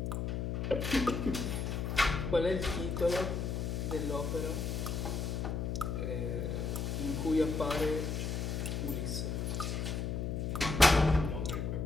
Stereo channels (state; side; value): noise; left; hum, 1 dB below the sound